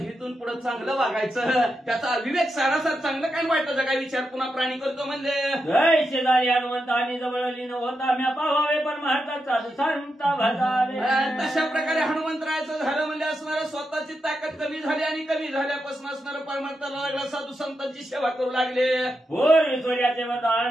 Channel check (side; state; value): both; normal; correlation 0.86